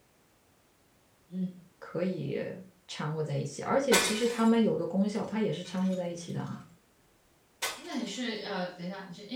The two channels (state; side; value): identical; both; correlation 1.00